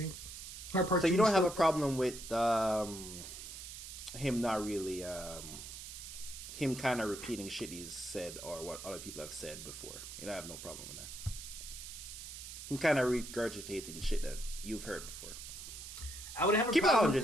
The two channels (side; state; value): right; noise; hiss, 10 dB below the sound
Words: Heart Part 2. So you don't have a problem with him not really him kind of repeating shit he's said or what other people have said before. You don't have no problem with that. Him kind of regurgitating shit that you've heard before. I would have a Keep it problem 100. with